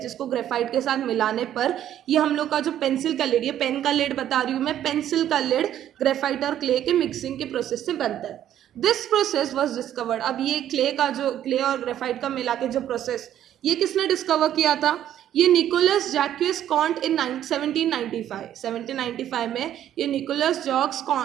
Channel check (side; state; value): left; quieter; 11.2 dB